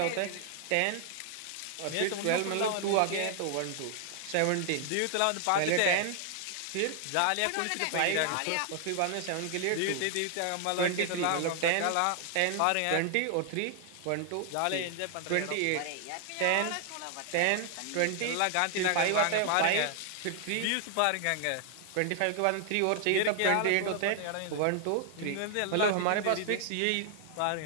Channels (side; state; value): both; different; correlation 0.00